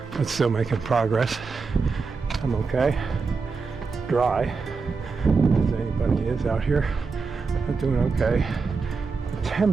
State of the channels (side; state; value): left; quieter; 4.7 dB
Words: but still making progress. I'm okay. Dry, as anybody is out here. I'm doing okay. The